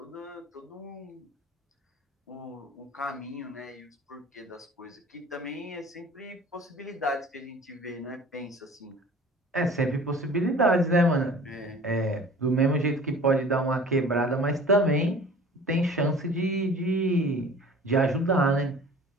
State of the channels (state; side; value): normal; both; correlation 0.45